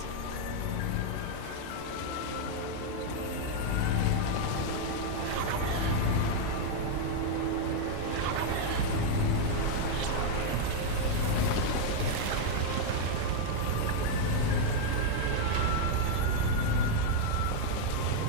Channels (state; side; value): different; both; correlation 0.00